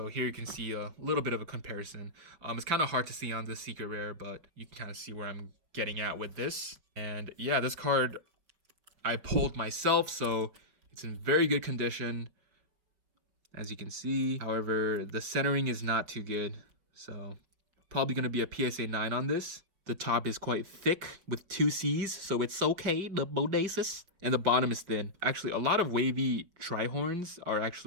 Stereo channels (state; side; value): late; left; 5.4 ms